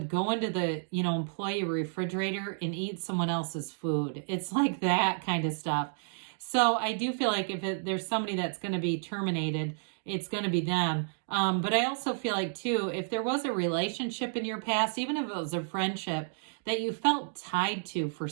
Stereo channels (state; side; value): silent; left; digital silence